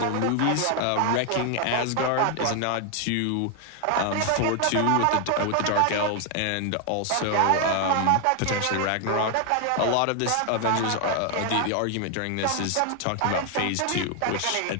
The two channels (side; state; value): both; different; correlation 0.01